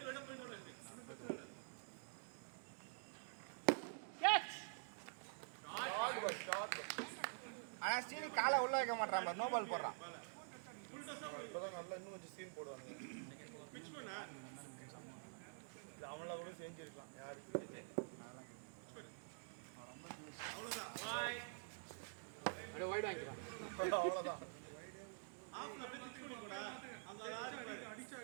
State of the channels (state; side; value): silent; left; digital silence